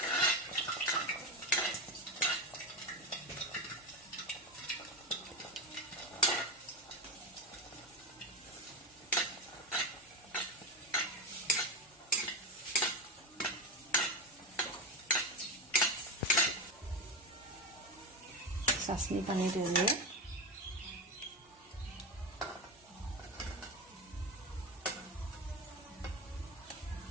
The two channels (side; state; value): both; normal; correlation 0.18